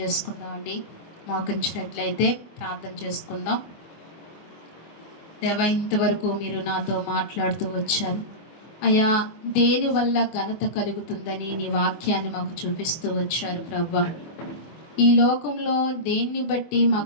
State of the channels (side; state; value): right; late; 24 ms